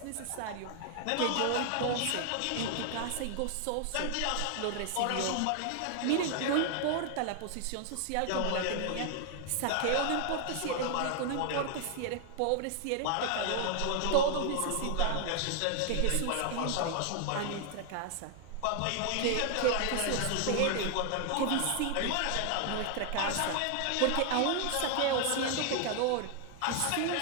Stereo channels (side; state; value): both; different; correlation 0.00